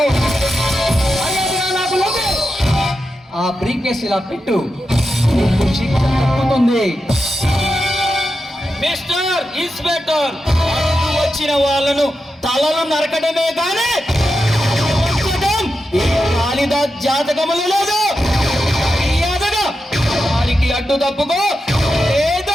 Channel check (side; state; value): both; normal; correlation 0.89